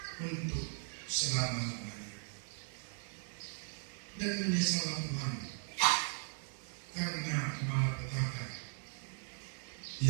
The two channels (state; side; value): silent; left; 52 dB below the other